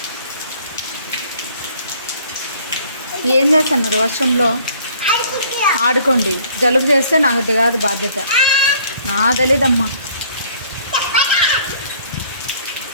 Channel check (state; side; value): inverted; both; correlation -0.58